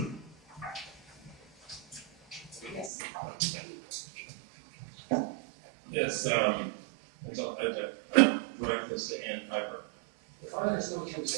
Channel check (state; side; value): drops out; left; at 2.9 s